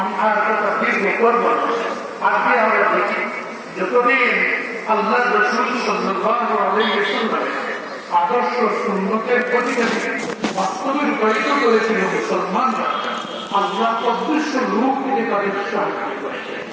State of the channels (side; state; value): both; identical; correlation 1.00